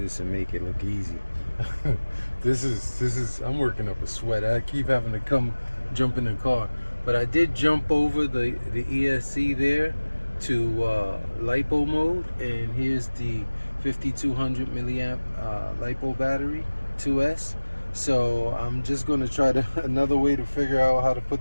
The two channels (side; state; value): both; inverted; correlation -1.00